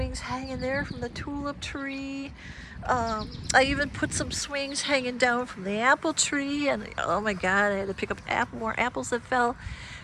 hanging there from the tulip tree. I even put some swings hanging down from the apple tree, and oh my God, I had to pick up more apples that fell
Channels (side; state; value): both; identical; correlation 1.00